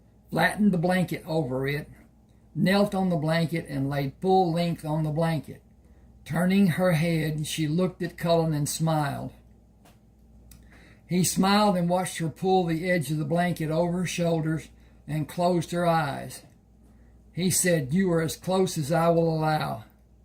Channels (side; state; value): both; identical; correlation 1.00